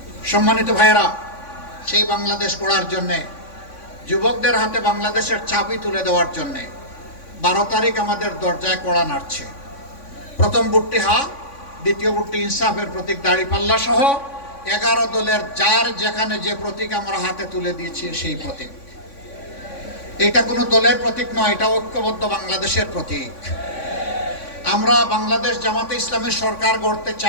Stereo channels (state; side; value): late; right; 3.6 ms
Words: সম্মানিত ভাইয়েরা, সেই বাংলাদেশ গড়ার জন্যে, যুবকদের হাতে বাংলাদেশের চাবি তুলে দেওয়ার জন্যে 12 তারিখ আমাদের দরজায় কড়া নাড়ছে। প্রথম ভোটটি হা, দ্বিতীয় ভোটটি ইনসাফের প্রতীক দাঁড়িপাল্লা সহ 11 দলের যার যেখানে যে প্রতীক আমরা হাতে তুলে দিয়েছি সেই প্রতীক। এটা কোনো দলের প্রতীক নয়, এটা ঐক্যবদ্ধ বাংলাদেশের প্রতীক। আমরা বাংলাদেশ জামাতে ইসলামের সরকার গড়তে